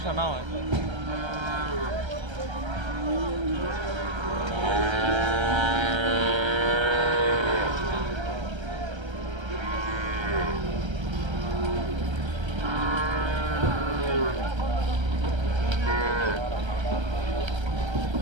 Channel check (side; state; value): left; late; 1.3 ms